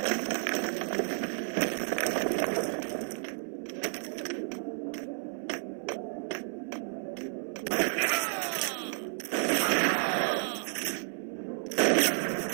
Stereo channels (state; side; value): silent; left; 57 dB below the other